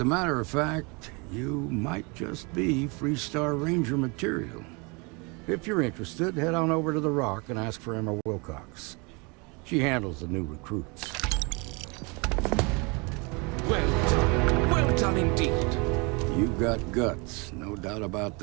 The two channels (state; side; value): quieter; left; 29.7 dB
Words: matter of fact, you might just be Freestar Ranger material. If you're interested, head on over to the Rock and ask for Emma Wilcox. She handles the new recruits. Well done indeed. You've got guts, no doubt about